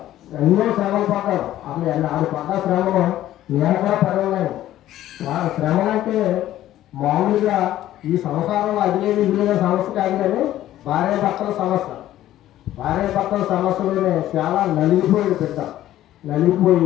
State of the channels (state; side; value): quieter; right; 13.4 dB